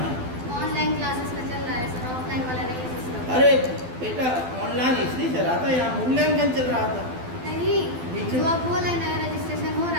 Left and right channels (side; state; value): left; late; 12 ms